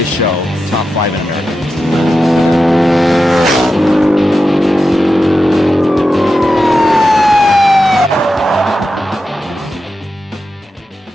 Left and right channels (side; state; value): both; normal; correlation 0.90